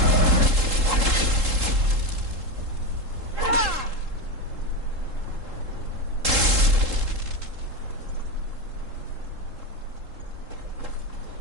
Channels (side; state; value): left; late; 3.7 ms